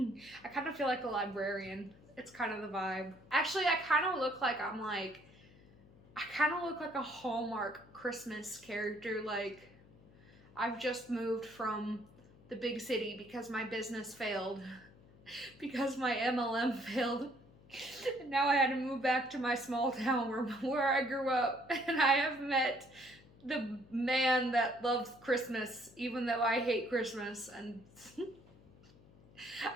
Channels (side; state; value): left; noise; hum, 24 dB below the sound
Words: kind of feel like a librarian. It's kind of the vibe. Actually, I kind of look like I kind of look like a Hallmark Christmas character. Like, I've just moved from the big city because my business failed, because my MLM failed. And now I had to move back to my small town where I grew up, and I have met the man that loves Christmas, even though I hate Christmas. And